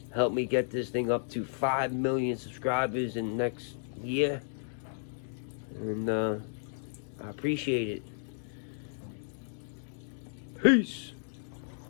Help me get this thing up to 5 million subscribers in the next year. And I appreciate it. Peace.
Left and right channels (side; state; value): right; silent; digital silence